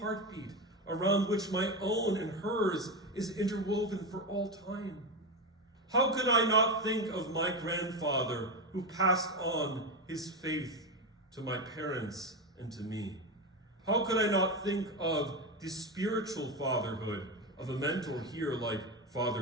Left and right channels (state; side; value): normal; both; correlation 0.15